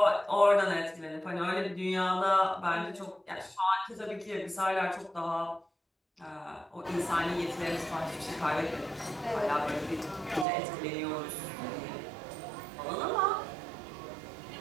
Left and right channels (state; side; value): drops out; left; at 10.5 s